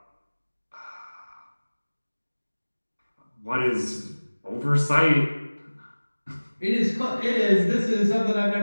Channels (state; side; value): inverted; both; correlation -1.00